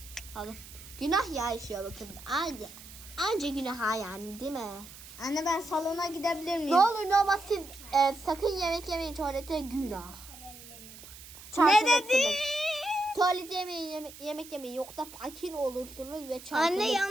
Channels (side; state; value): right; noise; hiss, 17 dB below the sound